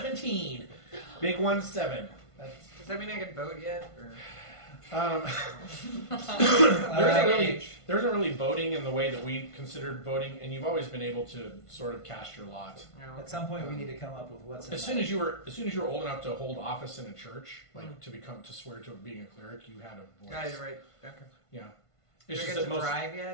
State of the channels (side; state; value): right; late; 1.5 ms